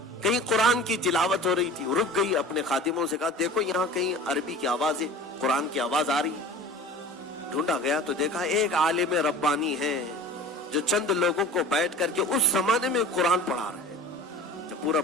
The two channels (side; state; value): both; normal; correlation 0.39